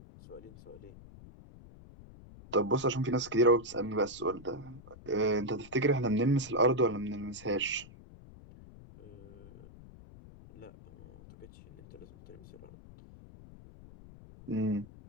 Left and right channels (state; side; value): noise; left; rumble, 19 dB below the sound